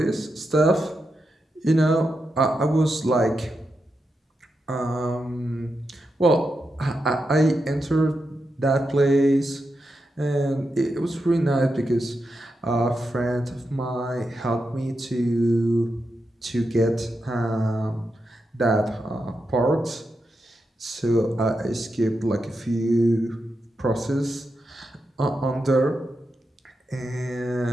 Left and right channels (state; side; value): normal; both; correlation 0.87